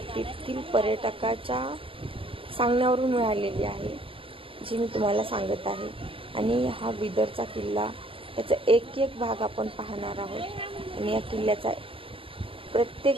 तेथील पर्यटकाच्या सांगण्यावरून मिळालेली आहे, जी मी तुम्हाला सांगत आहे। आणि हा बिदरचा किल्ला त्याचा एक एक भाग आपण पाहणार आहोत आणि या किल्ल्याचा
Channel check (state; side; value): late; left; 0.26 ms